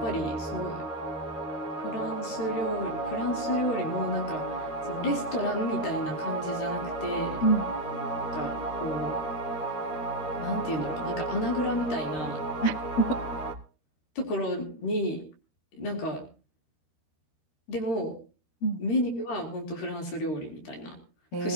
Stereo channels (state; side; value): late; right; 13 ms